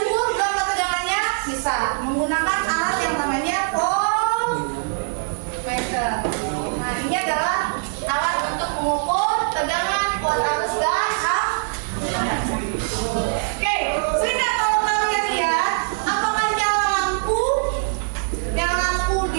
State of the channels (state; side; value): silent; left; digital silence